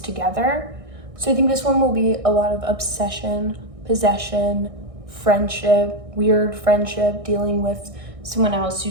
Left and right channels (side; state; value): left; late; 1.6 ms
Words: So I think this one will be a lot of obsession, possession, friendship, weird friendship, dealing with someone else